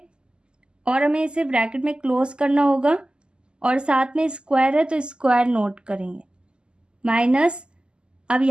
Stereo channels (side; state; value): left; late; 0.048 ms